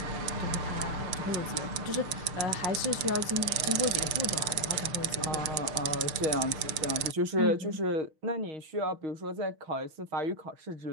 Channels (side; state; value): left; late; 6.6 ms